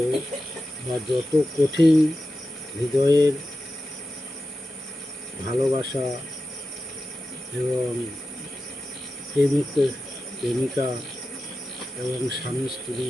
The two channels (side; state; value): both; normal; correlation 0.92